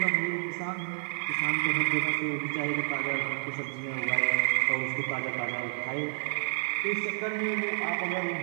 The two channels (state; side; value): silent; left; digital silence